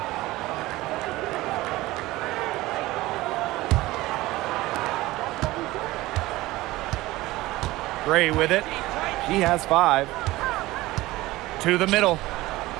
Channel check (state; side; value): quieter; left; 18.5 dB